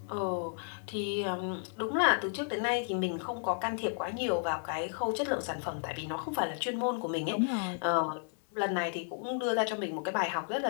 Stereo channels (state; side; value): silent; right; digital silence